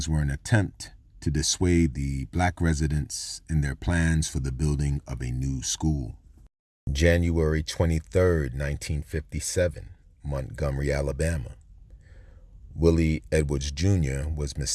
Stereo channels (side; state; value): both; identical; correlation 1.00